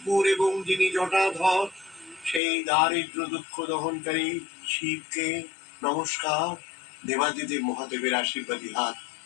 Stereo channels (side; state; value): right; drops out; at 2.4 s